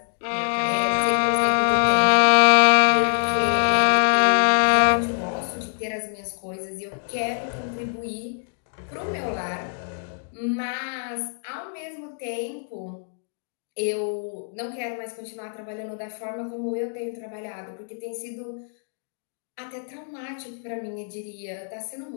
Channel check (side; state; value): right; silent; digital silence